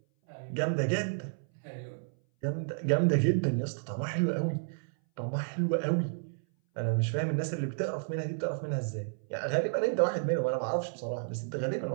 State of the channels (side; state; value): left; silent; 57 dB below the other